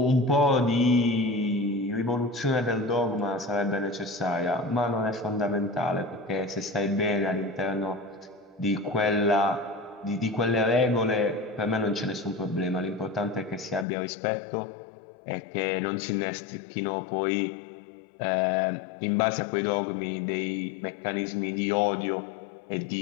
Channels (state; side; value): drops out; right; at 13.9 s